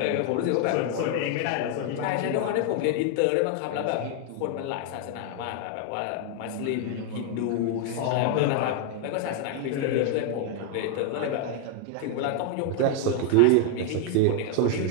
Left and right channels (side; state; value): both; different; correlation 0.00